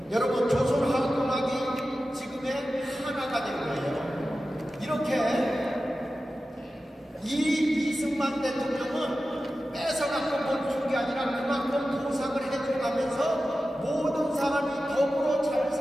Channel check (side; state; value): both; normal; correlation 0.94